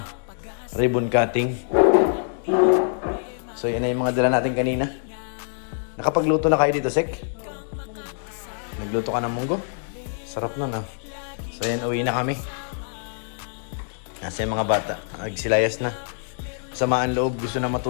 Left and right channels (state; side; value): silent; right; 62 dB below the other